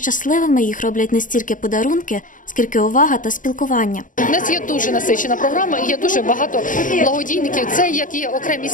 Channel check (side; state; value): right; late; 0.38 ms